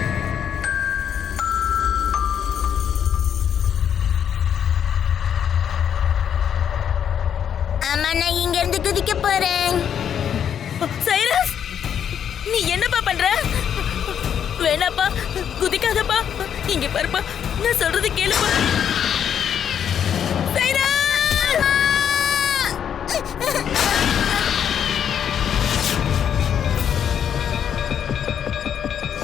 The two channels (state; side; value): quieter; right; 8.7 dB